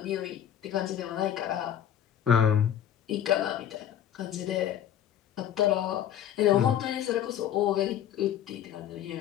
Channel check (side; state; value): right; quieter; 10.4 dB